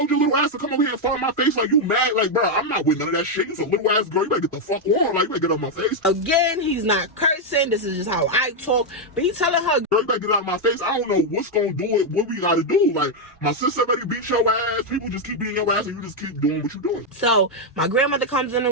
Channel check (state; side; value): normal; both; correlation 0.01